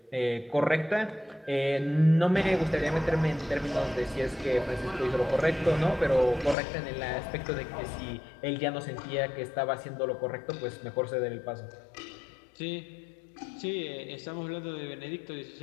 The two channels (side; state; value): right; drops out; at 6.6 s